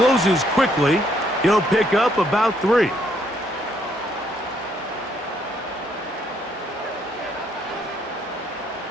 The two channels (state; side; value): normal; both; correlation 0.70